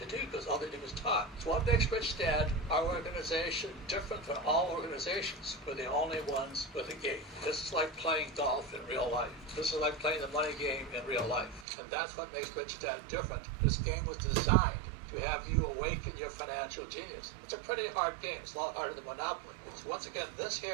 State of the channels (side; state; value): left; drops out; at 11.7 s